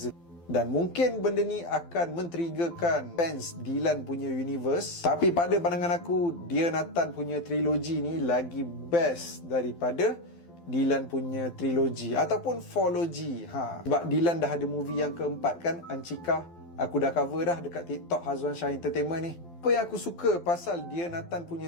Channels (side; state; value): right; late; 12 ms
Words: Dan mungkin benda ni akan men-triggerkan fans Dylan punya universe. Tapi pada pandangan aku, Dia Nathan punya trilogi ni lagi best daripada Dylan punya trilogi ataupun fourlogy. Sebab Dylan dah ada movie yang keempat kan, Ancika. Aku dah cover dah dekat TikTok Hazwan Shah Entertainment ni. Apa yang aku suka pasal Dia Nathan